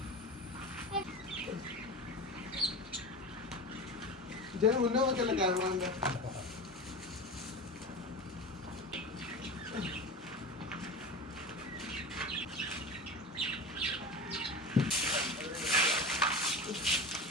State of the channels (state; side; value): normal; both; correlation 0.28